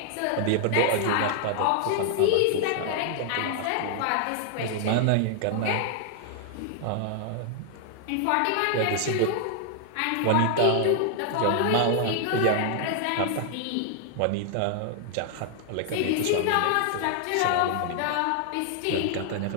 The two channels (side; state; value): both; different; correlation 0.00